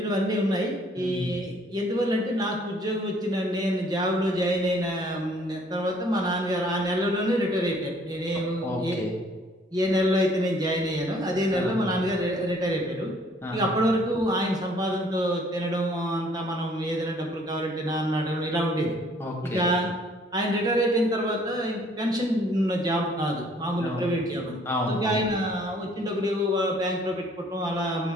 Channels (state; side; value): normal; both; correlation 0.60